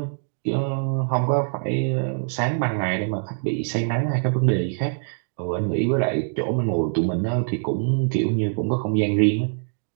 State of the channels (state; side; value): silent; left; digital silence